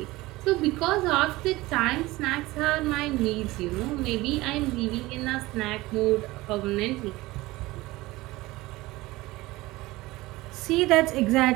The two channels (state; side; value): quieter; left; 19.6 dB